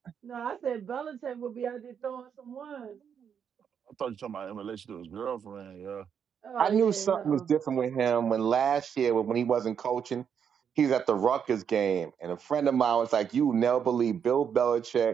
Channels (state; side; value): quieter; left; 7.6 dB